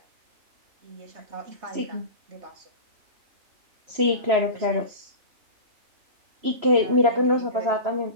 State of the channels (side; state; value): left; late; 3.0 ms